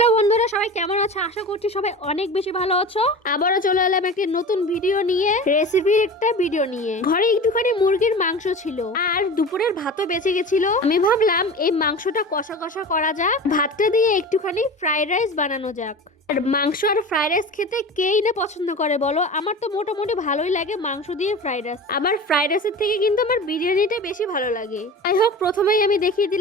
বন্ধুরা, সবাই কেমন আছো? আশা করছি সবাই অনেক বেশি ভালো আছো। আবারও চলে এলাম একটি নতুন ভিডিও নিয়ে, রেসিপির একটা ভিডিও নিয়ে। ঘরে একটুখানি মুরগির মাংস ছিল আর দুপুরের ভাতও বেঁচে গেছিল। আমি ভাবলাম এই মাংসটা কষা কষা করা যাক, ভাতটা দিয়ে একটুখানি ফ্রাইড রাইস বানানো যাক। আর মাংস আর ফ্রাইড রাইস খেতে কেই না পছন্দ করে বলো? আমার তো মোটামুটি ভালোই লাগে মাংস দিয়ে ফ্রাইড রাইস। আবার ফ্রাইড রাইসের থেকে কিন্তু আমার বিরিয়ানিটা বেশি ভালো লাগে। যাই হোক, প্রথমেই আমি দেখিয়ে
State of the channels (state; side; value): normal; both; correlation 0.33